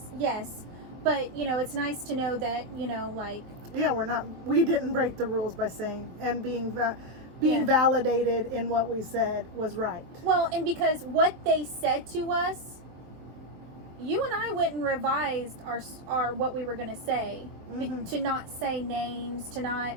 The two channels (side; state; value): left; late; 23 ms